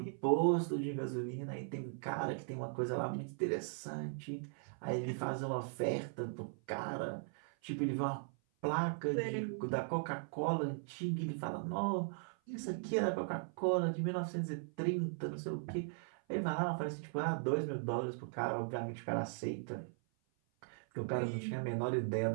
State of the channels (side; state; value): left; silent; 52 dB below the other